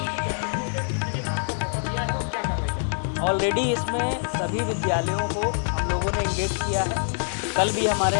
ऑलरेडी इसमें सभी विद्यालयों को हम लोगों ने इंगेज किया है। कल भी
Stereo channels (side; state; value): right; silent; digital silence